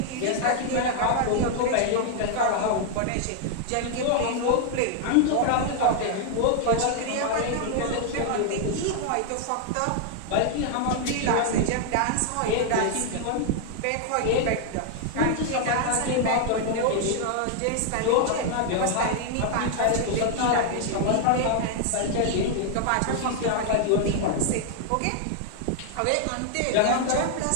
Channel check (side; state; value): both; different; correlation 0.00